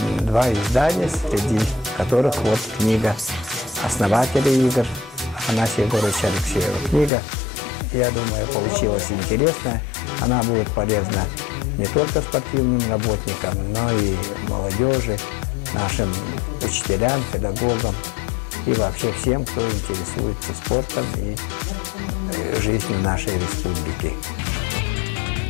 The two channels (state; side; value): drops out; right; at 7.1 s